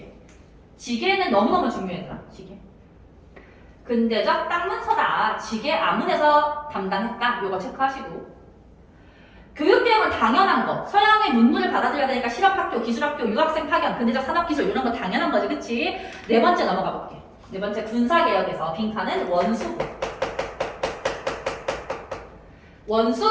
지계는 너무너무 중요했다. 지계. 근대적 땅 문서다. 지계 아문에서 담당했다. 이거 체크하시고 교육개혁은 당연한 거. 서양의 문물을 받아들여야 되니까 실업학교, 기술학교, 유학생 파견, 근대적 산업기술 이런 거 당연한 거지. 그치? 네 번째 넘어가 볼게. 네 번째 군사개혁에서 빈칸은 원수부.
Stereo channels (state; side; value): identical; both; correlation 1.00